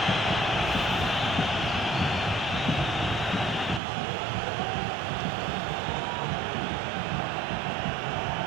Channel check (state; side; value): drops out; left; at 3.8 s